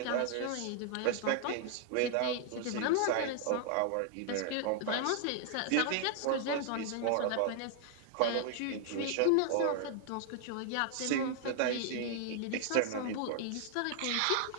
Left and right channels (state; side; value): different; both; correlation 0.00